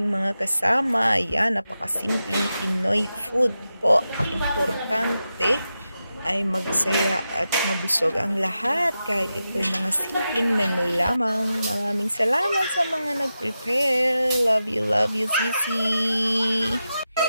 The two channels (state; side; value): inverted; both; correlation -0.91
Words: mga kasama. Ayan, napakasimpleng Pinoy food po. Importante ay magsaya at mabusog ang lahat. Kahit ito'y mga simpleng menu lamang. Maraming salamat sa mga nag-prepare. Love you, Sisi!